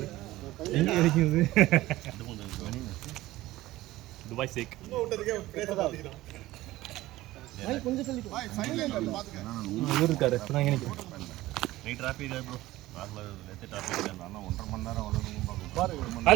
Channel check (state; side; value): quieter; left; 17.0 dB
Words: எங்க கிடைக்குது? துபாய் சேக். இவர் இருக்காரு. இப்ப நான் நினைக்கிறேன்.